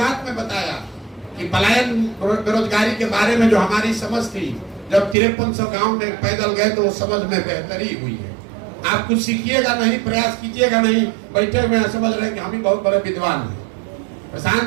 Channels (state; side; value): drops out; left; at 5.2 s